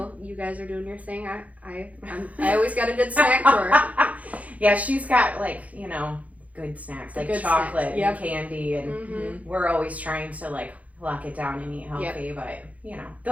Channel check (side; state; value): left; late; 0.069 ms